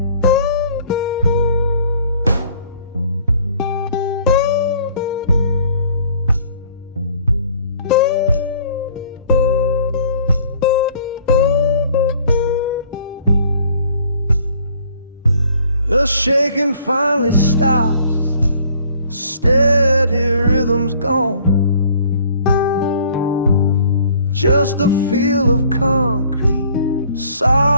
The shaking finally stops, steady rhythm's gone. Just a feel of concrete,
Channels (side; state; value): both; inverted; correlation -0.57